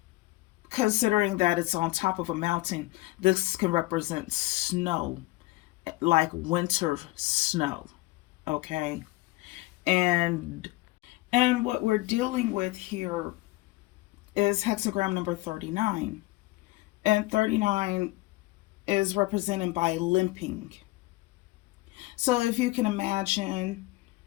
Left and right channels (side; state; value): right; quieter; 20.5 dB